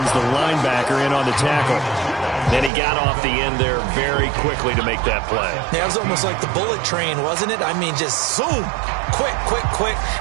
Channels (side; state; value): left; drops out; at 2.7 s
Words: the linebacker, in on the tackle. Then he got off the end there very quickly to make that play. Yeah, it was almost like the bullet train, wasn't it? I mean, just zoom. Quick, quick, quick.